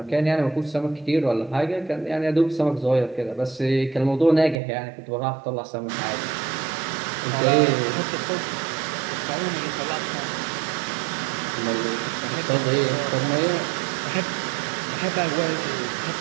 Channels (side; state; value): left; drops out; at 4.5 s